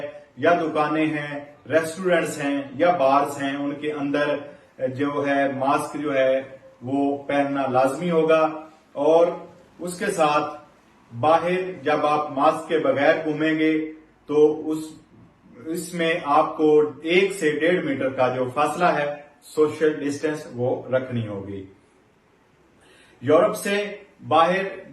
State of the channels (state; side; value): identical; both; correlation 1.00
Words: या दुकानें हैं, रेस्टोरेंट्स हैं या बार्स हैं, उनके अंदर जो है मास्क जो है वो पहनना लाजमी होगा। और उसके साथ बाहर जब आप मास्क के बगैर घूमेंगे तो इसमें आपको 1 से 1.5 मीटर का जो फासला है, सोशल डिस्टेंस, वो रखनी होगी। यूरोप से बाहर